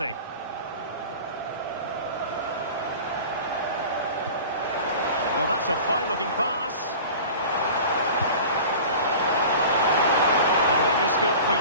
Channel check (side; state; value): both; inverted; correlation -0.38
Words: Well, that's a fine-looking pass. And maybe scope for